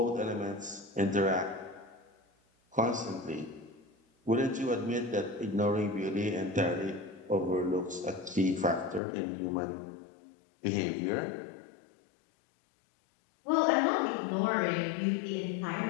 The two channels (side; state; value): right; drops out; at 9.0 s